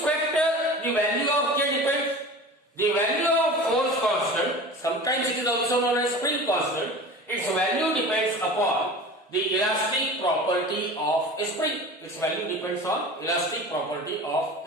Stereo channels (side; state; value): both; normal; correlation 0.36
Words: factor the value of K depends? The value of force constant, sometimes it is also known as spring constant, its value depends upon the elastic property of a spring. Its value depends on elastic property of